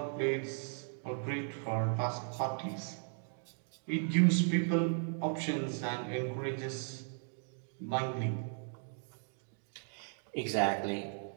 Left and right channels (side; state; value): left; silent; 53 dB below the other